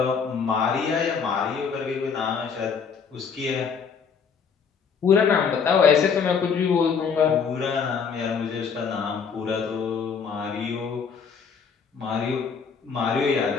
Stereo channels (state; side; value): quieter; right; 6.2 dB